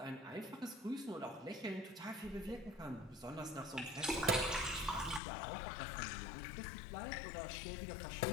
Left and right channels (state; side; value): drops out; right; at 5.2 s